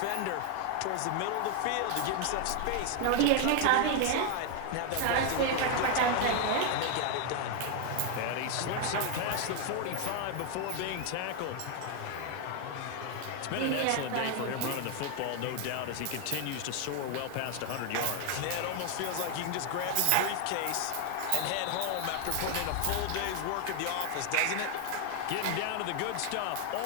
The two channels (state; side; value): different; both; correlation 0.01